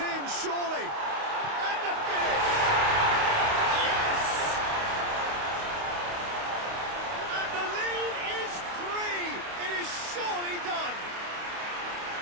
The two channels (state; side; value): late; left; 29 ms